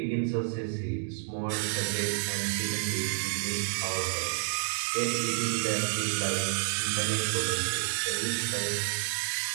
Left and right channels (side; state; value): left; silent; digital silence